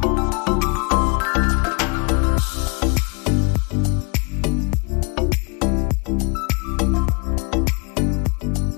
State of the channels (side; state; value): right; quieter; 32.0 dB